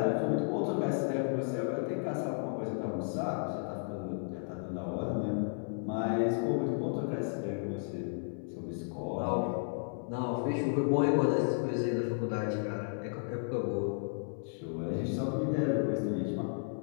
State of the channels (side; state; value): right; silent; digital silence